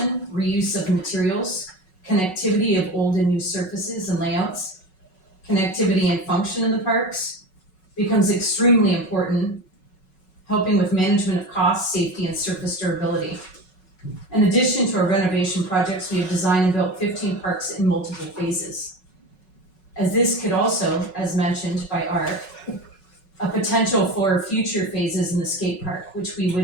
reuse of materials, connectivity of old and new surfaces and layouts, connectivity and function in the parks becomes extremely important, helping with management of cost, safety, and surface durability. In addition to our renovation projects, we have designed and built 15 parks in multiple phases. As this could also, as mentioned by Art, a potential for future phases in the skate park, which we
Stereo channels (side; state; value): right; late; 5.4 ms